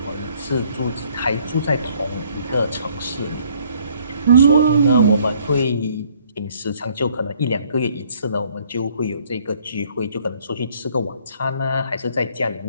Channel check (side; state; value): both; inverted; correlation -0.62